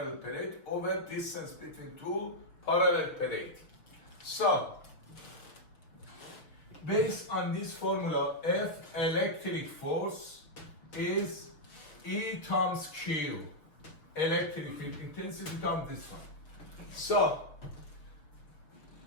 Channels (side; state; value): right; late; 6.2 ms